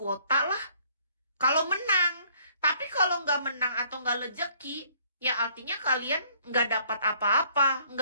lah. Kalau menang. Tapi kalau nggak menang atau nggak rezeki, ya artinya kalian nggak dapat apa-apa,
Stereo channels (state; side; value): inverted; both; correlation -0.62